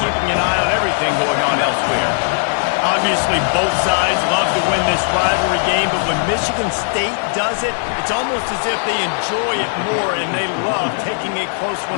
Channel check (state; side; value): silent; right; digital silence